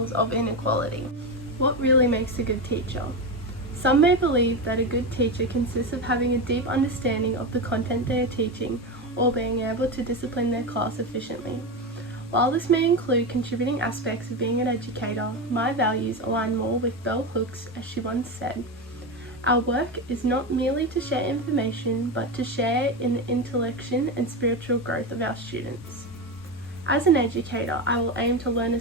of inequality. What really makes a good teacher? Some may believe that a good teacher consists of having a deep understanding of the content they are teaching or being able to discipline their class efficiently. While this may include contributing aspects of being an educator, my values align more with Bell Hooks, as she once said, "Our work is not merely to share information, but to share in the intellection and spiritual growth of our students." As an educator, I will aim to learn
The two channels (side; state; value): both; normal; correlation 0.16